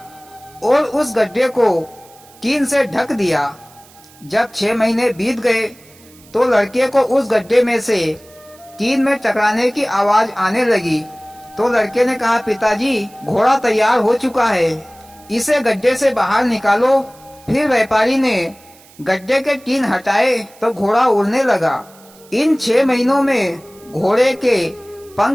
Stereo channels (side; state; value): right; noise; hiss, 26 dB below the sound